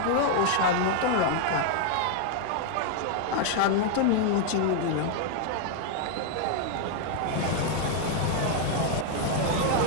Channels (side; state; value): both; different; correlation 0.00